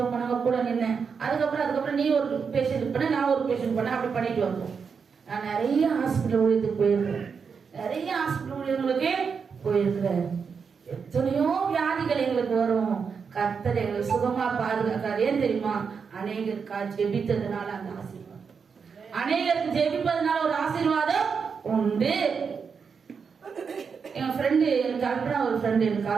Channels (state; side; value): quieter; left; 5.9 dB